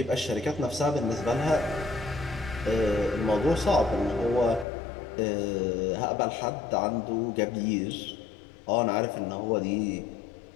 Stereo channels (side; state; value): right; drops out; at 4.7 s